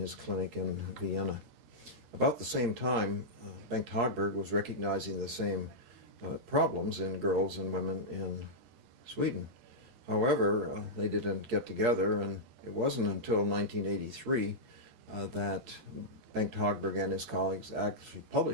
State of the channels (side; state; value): left; late; 13 ms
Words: clinic in Vienna. About the same time, Bengt Hagberg was recognizing the same problems in girls and women in Sweden. However, they didn't get together, and it wasn't until 1983 that Bengt Hagberg and his colleagues actually